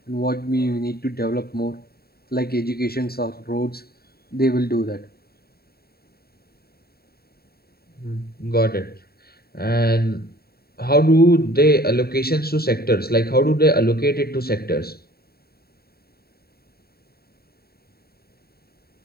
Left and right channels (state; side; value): late; right; 0.45 ms